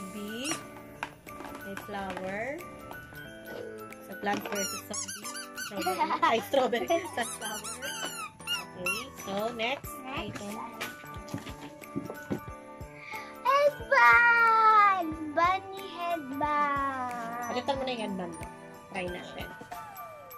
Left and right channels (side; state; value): both; identical; correlation 1.00